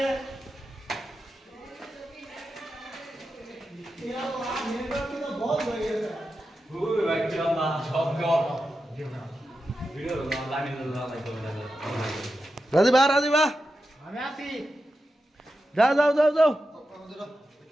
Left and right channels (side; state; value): both; normal; correlation 0.90